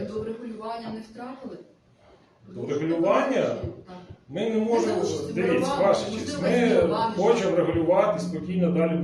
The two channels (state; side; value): identical; both; correlation 1.00